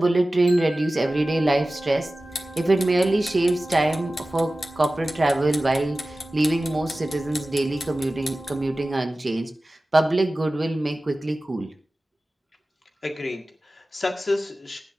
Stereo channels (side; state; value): both; normal; correlation 0.96